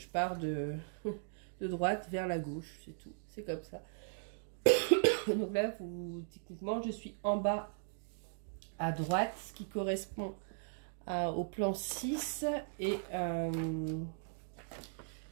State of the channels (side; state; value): left; silent; digital silence